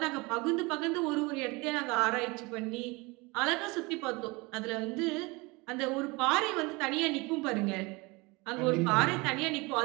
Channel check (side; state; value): left; quieter; 25.3 dB